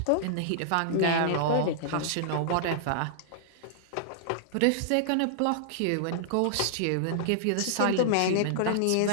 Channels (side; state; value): both; different; correlation -0.01